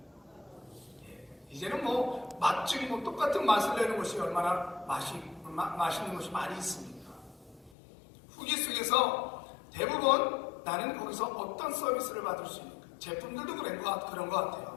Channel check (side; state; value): right; drops out; at 7.7 s